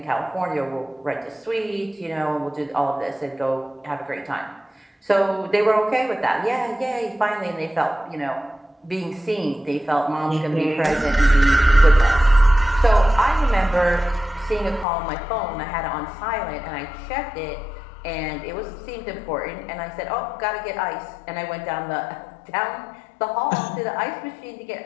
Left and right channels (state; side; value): drops out; right; at 14.9 s